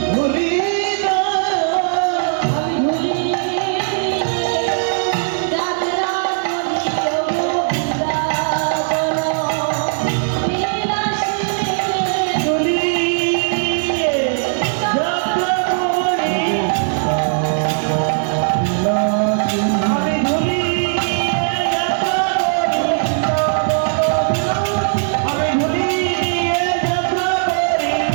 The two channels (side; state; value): left; silent; digital silence